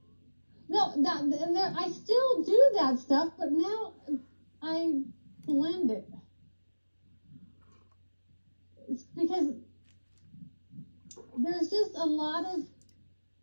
I still do that stuff, but now I blend it. It's because there's just a lot of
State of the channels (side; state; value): both; inverted; correlation -1.00